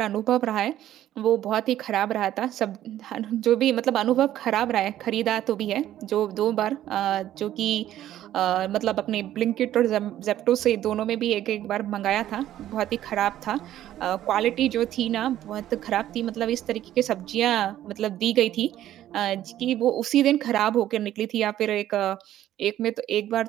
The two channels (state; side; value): quieter; left; 12.6 dB